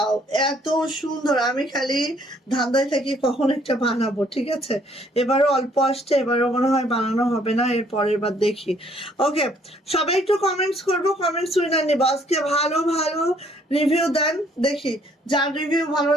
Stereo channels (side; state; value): both; normal; correlation 0.64